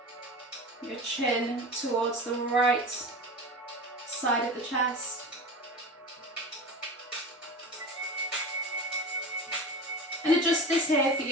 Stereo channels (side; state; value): both; normal; correlation 0.31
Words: your chin towards the right side of the chest. And adjust this here for